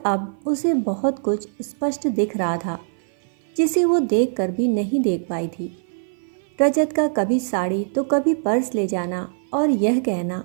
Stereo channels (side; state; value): left; silent; 55 dB below the other